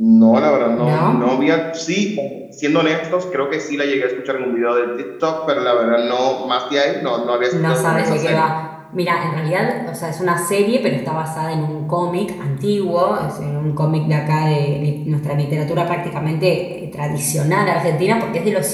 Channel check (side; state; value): both; identical; correlation 1.00